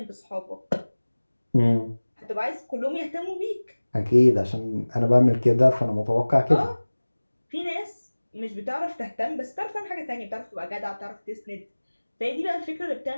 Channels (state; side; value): inverted; both; correlation -1.00